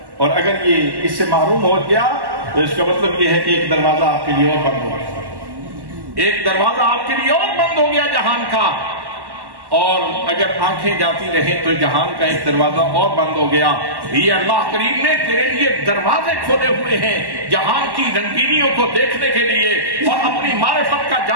اور اگر یہ اس سے محروم ہو گیا تو اس کا مطلب یہ ہے کہ ایک دروازہ آپ کے لیے اور بند ہو گیا، ایک دروازہ آپ کے لیے اور بند ہو گیا جہان کا۔ اور اگر آنکھیں جاتی رہیں تو جہان کا ایک دروازہ اور بند ہو گیا۔ یہ اللہ کریم نے تیرے لیے دروازے کھولے ہوئے ہیں جہان کی رنگینیوں کو دیکھنے کے لیے اور اپنی معرفت کا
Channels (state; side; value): late; left; 1.1 ms